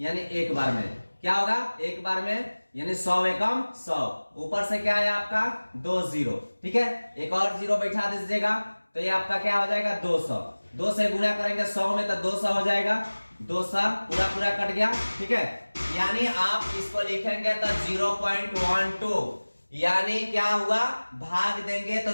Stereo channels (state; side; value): inverted; both; correlation -1.00